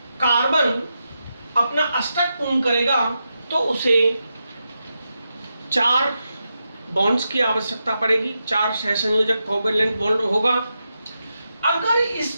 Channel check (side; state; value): both; inverted; correlation -0.87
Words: कार्बन अपना अष्टक पूर्ण करेगा तो उसे 4 बॉन्ड्स की आवश्यकता पड़ेगी, 4 सहसंयोजक कोवैलेंट बॉन्ड होगा। अगर